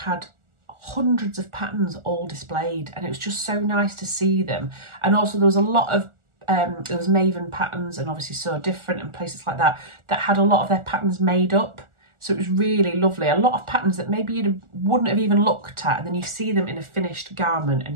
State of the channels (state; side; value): late; left; 1.4 ms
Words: hundreds of patterns all displayed, and it was just so nice to see them. And also there was a lot of there was Maven patterns and obviously So Different and places like that that had a lot of their patterns made up. So it was really lovely. A lot of patterns that maybe you wouldn't have even looked at, and then you see them in a finished garment